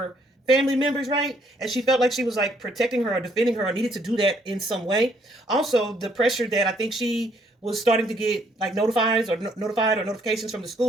family members, right? And she felt like she was like protecting her or defending her, or needed to do that in some way. Also, the pressure that I think she was starting to get like notified or notifications from the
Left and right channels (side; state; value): both; normal; correlation 0.67